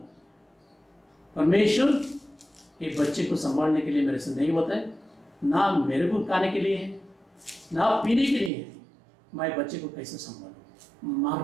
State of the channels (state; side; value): drops out; left; at 8.5 s